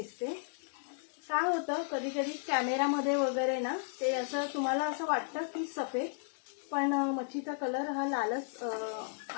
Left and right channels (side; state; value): right; silent; digital silence